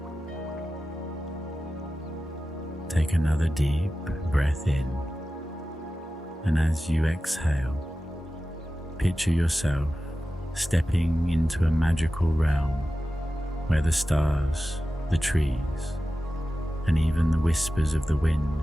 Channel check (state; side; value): normal; both; correlation 0.94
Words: Take another deep breath in, and as you exhale, picture yourself stepping into a magical realm where the stars, the trees, and even the whispers of the